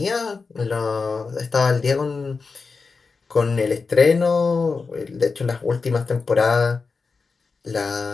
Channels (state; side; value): quieter; right; 4.6 dB